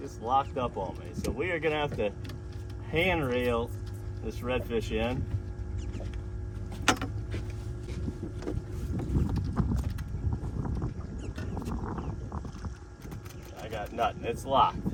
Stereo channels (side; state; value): both; identical; correlation 1.00